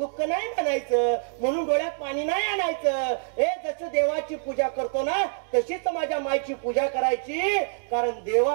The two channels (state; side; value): silent; left; digital silence